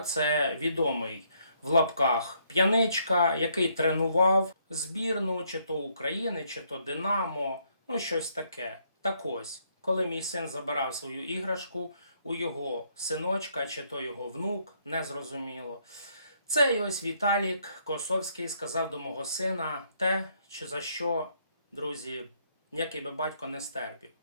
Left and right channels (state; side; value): inverted; both; correlation -0.71